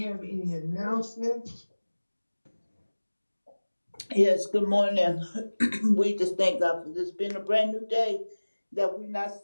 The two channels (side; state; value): both; inverted; correlation -1.00